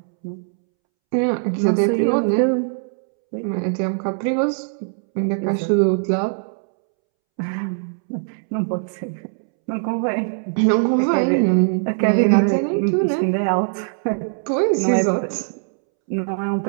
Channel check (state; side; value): silent; left; 65 dB below the other